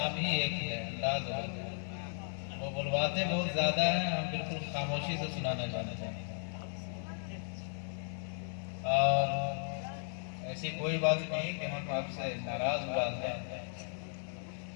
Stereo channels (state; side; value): silent; right; 54 dB below the other